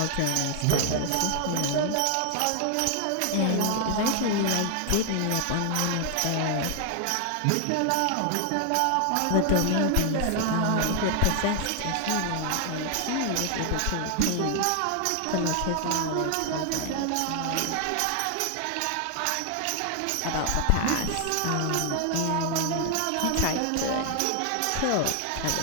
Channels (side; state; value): both; different; correlation 0.00